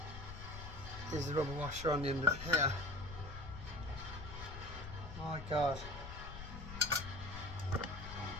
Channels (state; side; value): noise; left; rumble, 10 dB below the sound